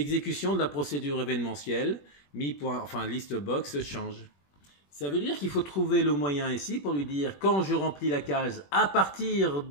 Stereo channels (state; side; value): late; right; 21 ms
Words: de la procédure événementielle, liste box change. Ça veut dire qu'il faut trouver le moyen ici pour lui dire quand je remplis la case à partir